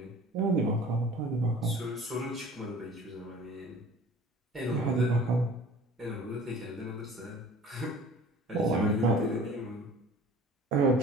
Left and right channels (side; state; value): both; normal; correlation 0.45